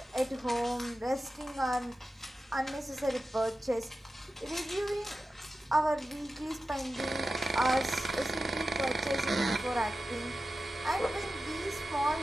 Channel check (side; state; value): both; normal; correlation 0.93